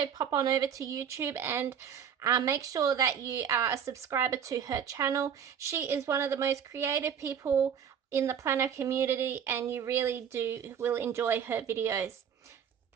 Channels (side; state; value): left; quieter; 8.0 dB